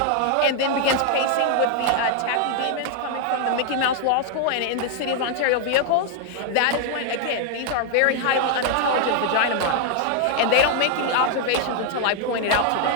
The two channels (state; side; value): different; both; correlation 0.00